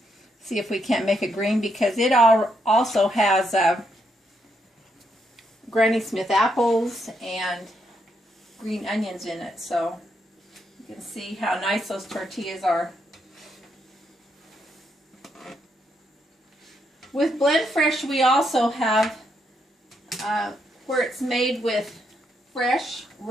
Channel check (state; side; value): normal; both; correlation 0.78